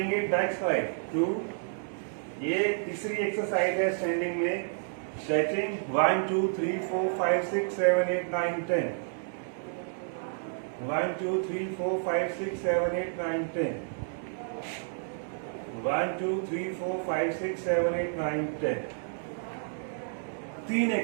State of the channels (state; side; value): silent; left; digital silence